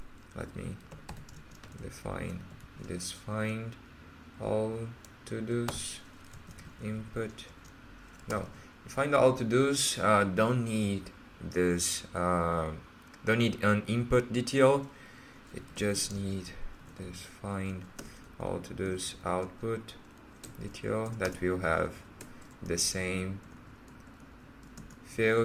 let me define this find all to-dos input. No, find all to-dos don't need this don't need an input detail. It just need this find all to-dos output detail that will have the same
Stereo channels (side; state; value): both; identical; correlation 1.00